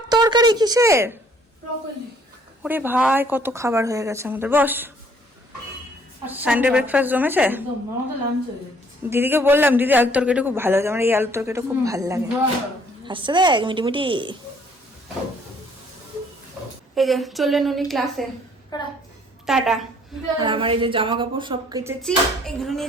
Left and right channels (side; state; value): both; normal; correlation 0.61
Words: তরকারি কিসের? ওরে ভাই, কত খাবার হয়ে গেছে আমাদের। বস, সানডে ব্রেকফাস্ট জমেছে। দিদিকে বললাম, দিদি আলুর তরকারিটা খুব ভালো হয়েছে, আমার এই আলুর তরকারিটা খুব ভালো লাগে। আসছে দেখ মিটি মিটি। এই যে চললেন উনি ক্লাসে, টাটা। আর আমার এই যে জামা কাপড় সব কেচেছি, এগুলো